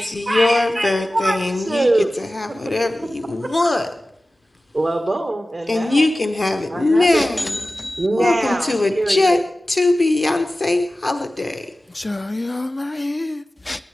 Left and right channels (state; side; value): normal; both; correlation 0.96